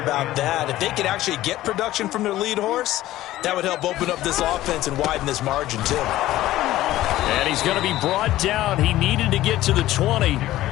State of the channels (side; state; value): right; quieter; 15.2 dB